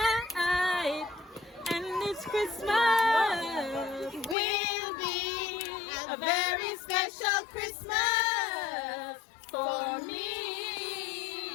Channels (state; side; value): drops out; right; at 4.4 s